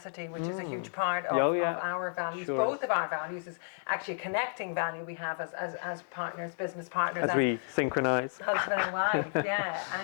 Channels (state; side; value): silent; right; digital silence